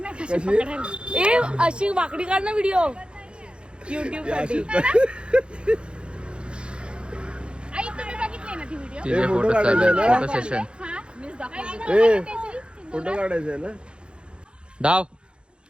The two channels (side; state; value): left; late; 0.055 ms